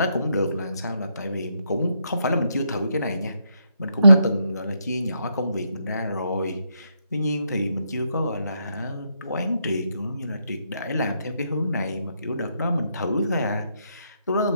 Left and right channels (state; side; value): inverted; both; correlation -0.78